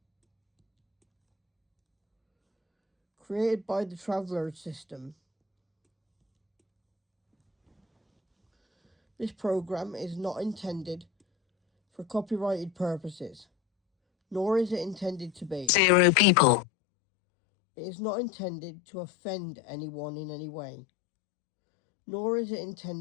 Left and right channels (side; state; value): right; drops out; at 15.7 s